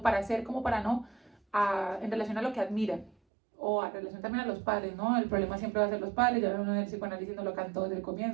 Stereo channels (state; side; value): drops out; left; at 3.2 s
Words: para ser como para no, en relación a lo que admira o en relación también a los padres, ¿no? El problema siempre va a ser los padres, ya uno del psicoanálisis no lo cantó desde el